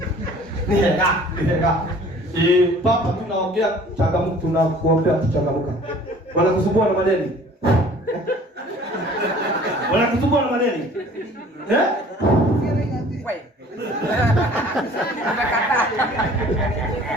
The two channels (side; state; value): both; normal; correlation 0.50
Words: Nih kak. Papa tunaongea changamoto, tunakuombea changamoto. Wanakusumbua na madeni. Wanakusumbua na madeni. Wewe. Unakataa.